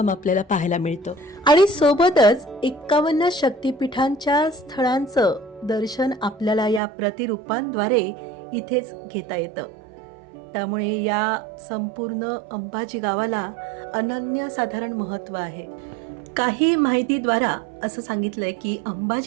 आपल्याला पाहायला मिळतो. आणि सोबतच 51 शक्तिपीठांच्या स्थळांचं दर्शन आपल्याला या प्रतिरूपांद्वारे इथेच घेता येतं. त्यामुळे या संपूर्ण अंबाजी गावाला अनन्यसाधारण महत्त्व आहे. काही माहितीद्वारा असं सांगितलंय की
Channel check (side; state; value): left; drops out; at 6.8 s